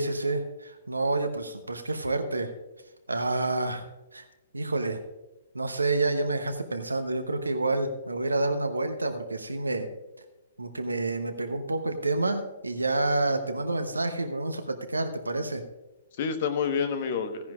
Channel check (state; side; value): inverted; both; correlation -0.77